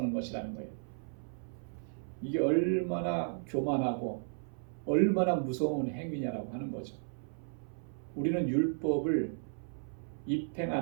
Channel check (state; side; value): silent; left; 55 dB below the other